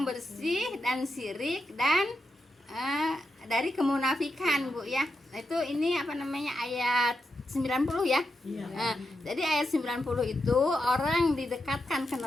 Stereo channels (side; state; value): both; normal; correlation 0.86